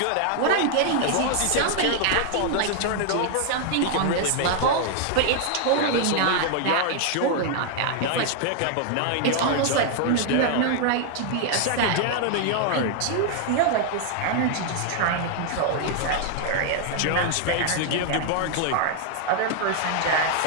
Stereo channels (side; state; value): both; different; correlation 0.00